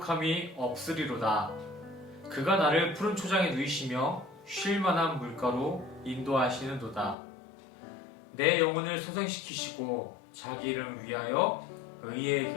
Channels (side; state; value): right; drops out; at 7.2 s